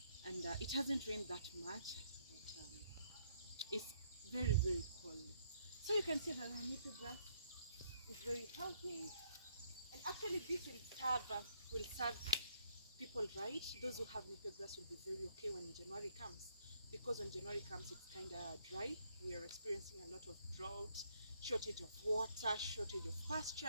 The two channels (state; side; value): inverted; both; correlation -0.69